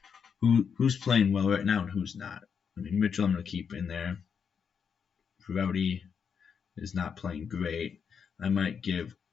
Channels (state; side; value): quieter; right; 6.8 dB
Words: Who's playing well right now and who's not? Mitchell I'm going to keep in there. Rowdy is not playing great. I might give